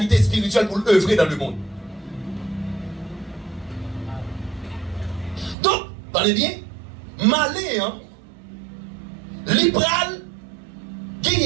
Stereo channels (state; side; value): drops out; left; at 5.6 s